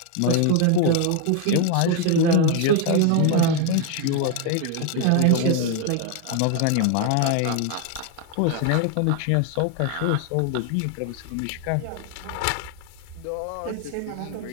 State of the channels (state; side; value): different; both; correlation 0.01